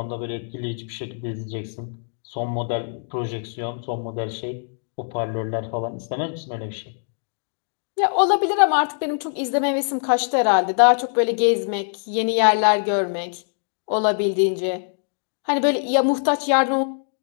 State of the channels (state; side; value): silent; right; digital silence